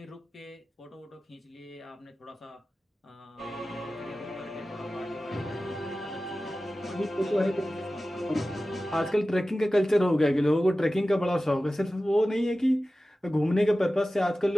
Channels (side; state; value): both; normal; correlation 0.95